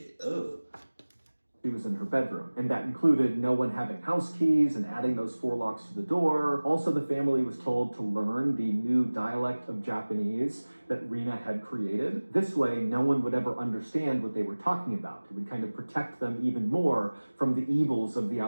Ugh. She was in her bedroom, and that included no one having house keys and adding those 4 locks to the door. Also, the family was told to learn the new dialect of Japanese that Rina had created. This way, no one would ever understand what they were talking about. It would kind of protect them even more from the evils of the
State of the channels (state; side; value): inverted; both; correlation -1.00